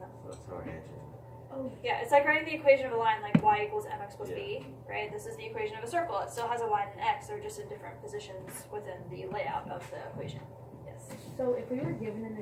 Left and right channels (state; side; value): identical; both; correlation 1.00